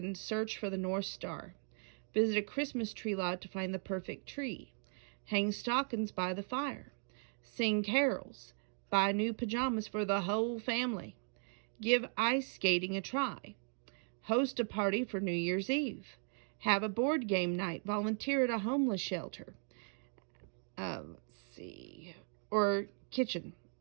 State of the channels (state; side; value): silent; left; 53 dB below the other